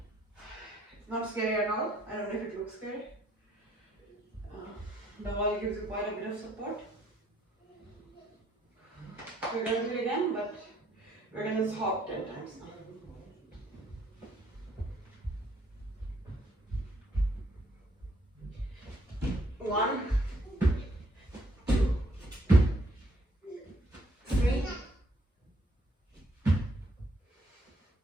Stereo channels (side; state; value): both; normal; correlation 0.68